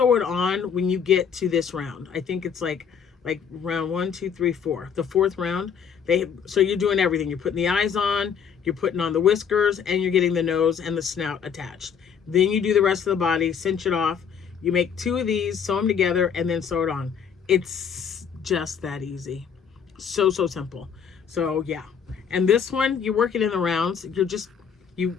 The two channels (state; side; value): quieter; right; 7.2 dB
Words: it on when you get to this round. I think it's like round 1, 2, 3, 4. The 4th round, so you're doing everything. You're putting the eyes on, you're putting on the whiskers, and you're getting the nose and the snout attached. Then you do the rest of the body, cinch it off. You make 2 of these, sew them together, and then sew it on. It's just that easy. So simple. So yeah. And this one, you work it in the rounds.